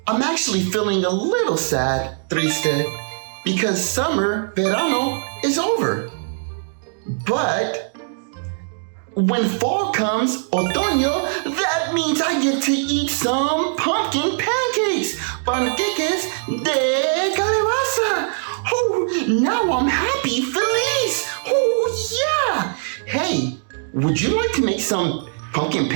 I'm actually feeling a little sad, Triste, because summer, Verano, is over. But when fall comes, Otoño, that means I get to eat some pumpkin pancakes, Pancakes de Calabaza. Oh, now I'm happy, feliz. Oh, yeah. Hey, would you like to make some pumpkin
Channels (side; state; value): left; silent; digital silence